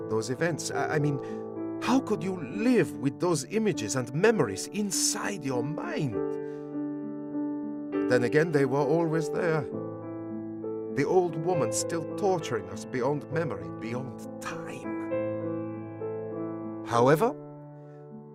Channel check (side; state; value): both; identical; correlation 1.00